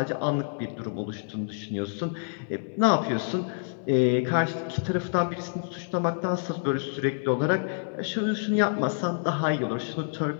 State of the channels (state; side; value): silent; right; digital silence